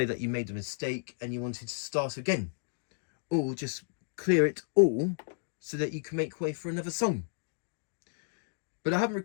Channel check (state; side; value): silent; right; digital silence